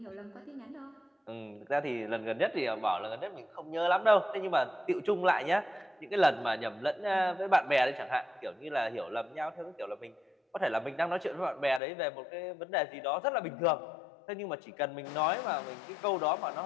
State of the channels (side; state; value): right; drops out; at 11.8 s